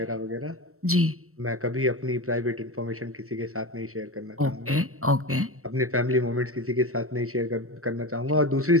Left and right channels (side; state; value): left; late; 0.63 ms